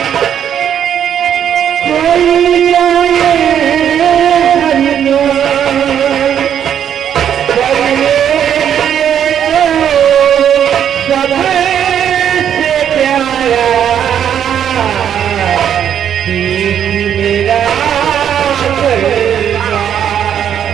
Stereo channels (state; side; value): quieter; left; 9.2 dB